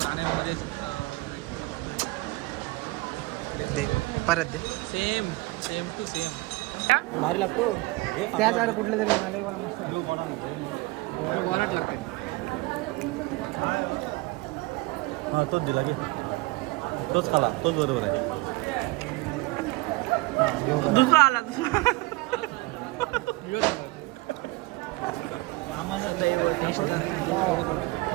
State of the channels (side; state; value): left; quieter; 22.2 dB